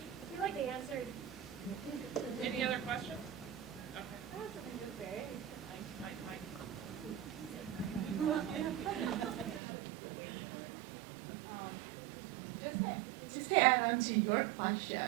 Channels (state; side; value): drops out; left; at 9.6 s